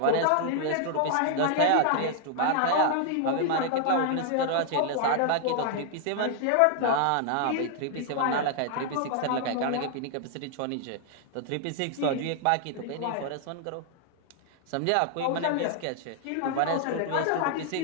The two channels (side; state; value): both; different; correlation 0.00